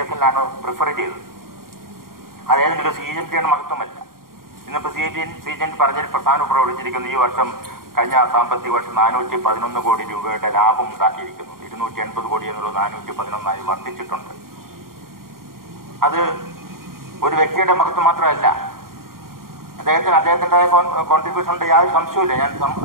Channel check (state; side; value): late; left; 0.92 ms